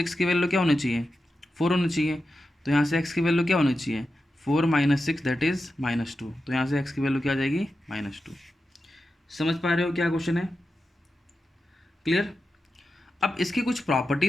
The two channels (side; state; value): both; normal; correlation 0.90